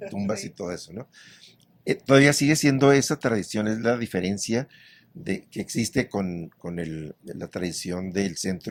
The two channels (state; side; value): identical; both; correlation 1.00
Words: tumbas y todo eso, ¿no? Todavía sigue siendo esa tradición, es la diferencia que existe con la tradición del